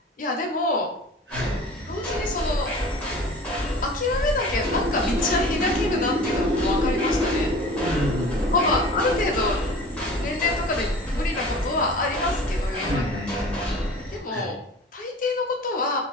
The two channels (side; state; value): both; normal; correlation 0.41